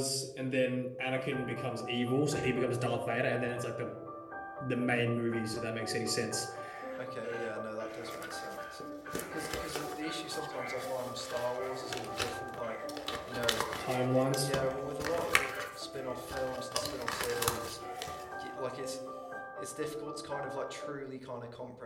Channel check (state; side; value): identical; both; correlation 1.00